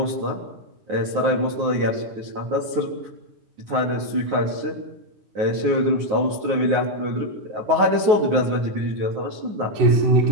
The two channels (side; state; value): left; late; 9.5 ms